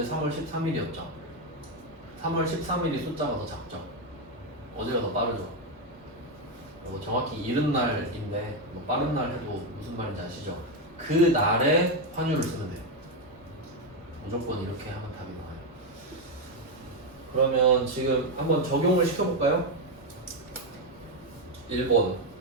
3월 13일이었죠. 3월 13일이 숫자가 더 작죠. 어제가 더 빠르죠. 정확히 이른 날인데 뭐 빠른 날 해도 무슨 말인지 아시죠? 그 날에 환율을 쓰면 돼요. 무조건 이렇게 하면 답이 나와요. 그러면 지금 한번 적용을 시켜볼까요?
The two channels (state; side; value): normal; both; correlation 0.06